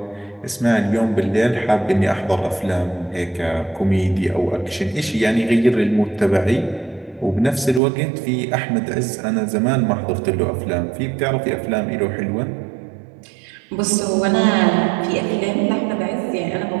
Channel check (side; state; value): left; drops out; at 7.8 s